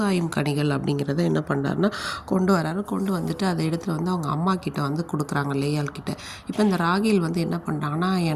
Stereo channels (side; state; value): both; identical; correlation 1.00